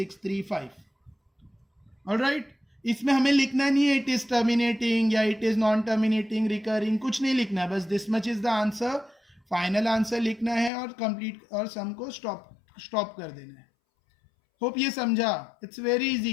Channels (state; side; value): drops out; right; at 10.7 s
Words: Alright, इसमें हमें लिखना नहीं है इट इज टर्मिनेटिंग या it is non terminating, recurring, कुछ नहीं लिखना है, बस this much is the answer, final answer लिखना है और कंप्लीट, और सम को स्टॉप कर देना है। होप ये समझा, इट्स वेरी इजी,